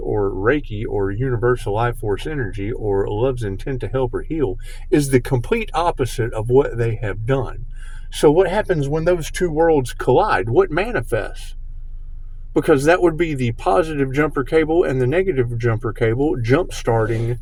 Reiki or universal life force energy or love's intent to help or heal is the complete opposite of what they have done. So what happens when those two worlds collide? What manifests? Because that would be the positive jumper cable and the negative jumper cable jump starting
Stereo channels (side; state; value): both; identical; correlation 1.00